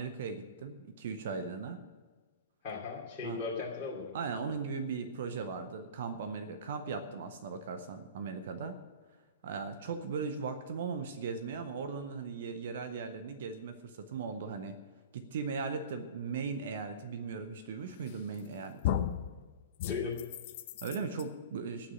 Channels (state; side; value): inverted; both; correlation -0.36